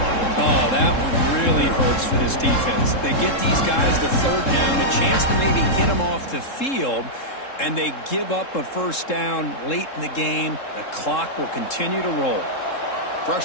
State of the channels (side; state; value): right; late; 3.7 ms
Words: Oh, that one really hurts for this defense. They get these guys the 3rd down, a chance to maybe get them off the field, and they give up a 1st down late in the game. The clock will continue to roll. Fresh